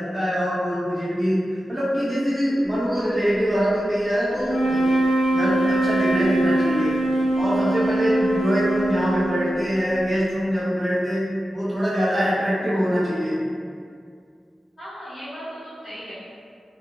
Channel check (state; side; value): normal; both; correlation 0.92